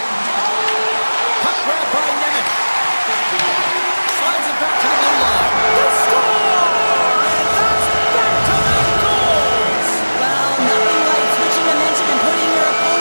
Puck grab by Nemec. Slides it back to the blue line. They score! And that's back-to-back goals! Well, nothing like switching momentum and putting your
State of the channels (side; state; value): both; inverted; correlation -1.00